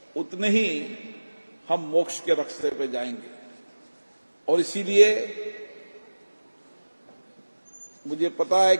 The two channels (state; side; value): inverted; both; correlation -1.00